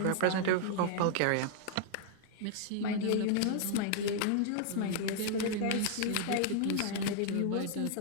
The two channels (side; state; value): both; different; correlation 0.00